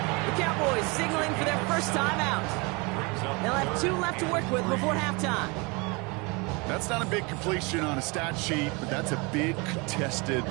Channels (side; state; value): left; quieter; 28.2 dB